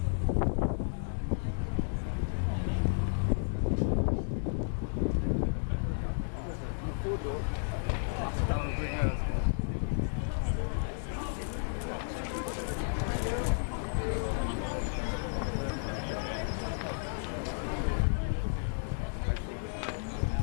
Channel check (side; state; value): right; silent; digital silence